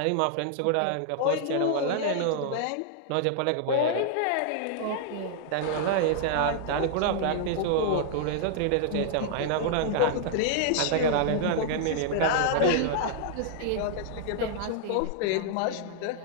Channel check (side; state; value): both; different; correlation -0.01